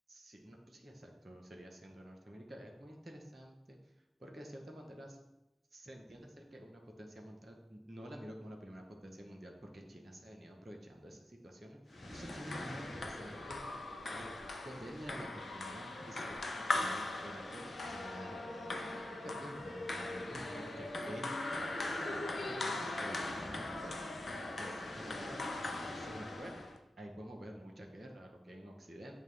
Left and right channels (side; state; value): both; normal; correlation 0.89